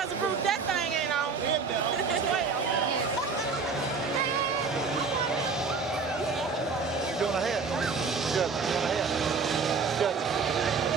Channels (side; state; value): left; quieter; 4.8 dB